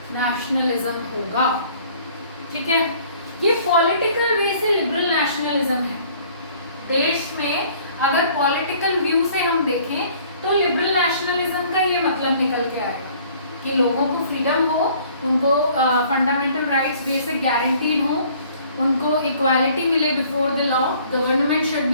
नेशनलिज्म होगा। ठीक है, ये पॉलिटिकल वे से लिबरल नेशनलिज्म है। देश में अगर पॉलिटिकल व्यू से हम देखें तो लिबरल नेशनलिज्म का ये मतलब निकल के आएगा कि लोगों को फ्रीडम हो, उनको फंडामेंटल राइट्स बेसिक गारंटीड हो, उनको इक्वालिटी मिले before the law, government should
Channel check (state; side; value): inverted; both; correlation -0.56